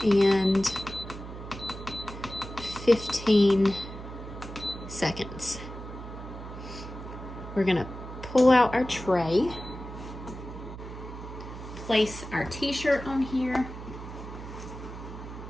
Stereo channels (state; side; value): noise; right; hum, 11 dB below the sound